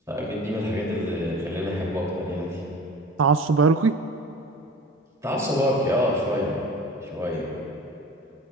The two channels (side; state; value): both; normal; correlation 0.38